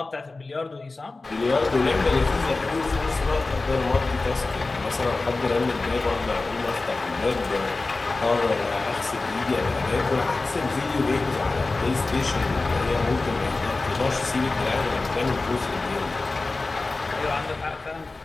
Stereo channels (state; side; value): quieter; right; 3.4 dB